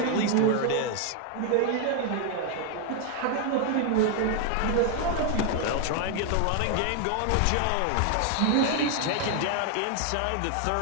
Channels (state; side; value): different; both; correlation 0.00